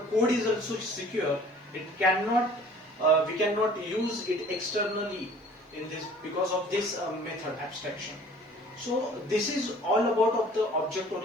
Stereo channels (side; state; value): both; normal; correlation 0.51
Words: code is also secure. It cannot, we cannot use it externally in this because of this method abstraction. So this is all about of the